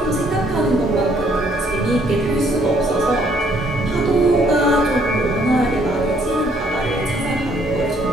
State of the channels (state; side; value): normal; both; correlation 0.66